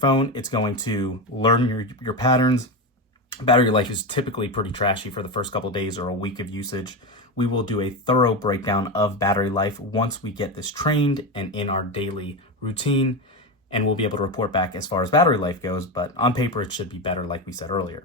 it's going to learn your patterns. Battery life is typically pretty trashy for the first couple of days or a week of usage. We will do a thorough breakdown of battery life once we get this trained and in our daily routine, and we'll be able to report back as far as battery life goes, but on paper it should be better like we said earlier.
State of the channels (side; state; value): both; normal; correlation 0.16